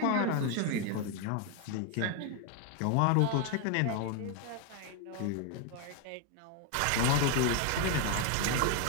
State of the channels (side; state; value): both; different; correlation 0.01